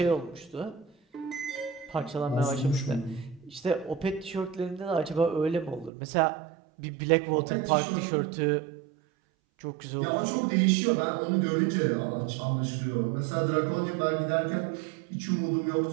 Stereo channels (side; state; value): left; drops out; at 5.9 s